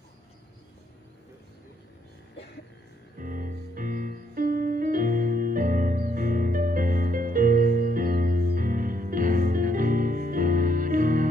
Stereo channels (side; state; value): both; normal; correlation 0.72